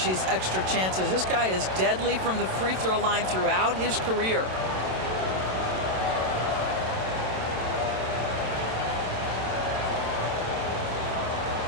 these extra chances. This guy is deadly from the free throw line throughout his career.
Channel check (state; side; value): late; left; 27 ms